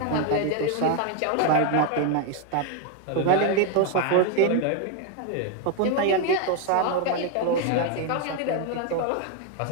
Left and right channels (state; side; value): different; both; correlation 0.01